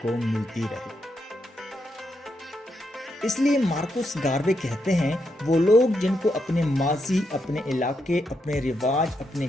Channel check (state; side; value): normal; both; correlation 0.82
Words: کو ملتی رہے۔ اس لیے مارکوس گاروے کہتے ہیں وہ لوگ جن کو اپنے ماضی، اپنے علاقے، اپنے رواج، اپنے